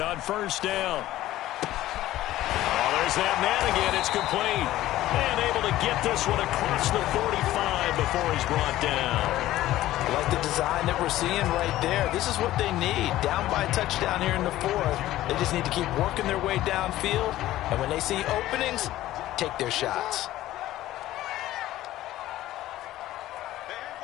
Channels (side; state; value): right; quieter; 14.9 dB